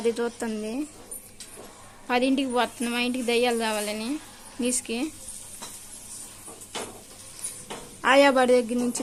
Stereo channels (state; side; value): identical; both; correlation 1.00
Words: చూస్తుంది 10ంటికి పోతుంది మా ఇంటికి దెయ్యాలు కావాలని నీసుకి ఆయాబాడి దగ్గర నుంచి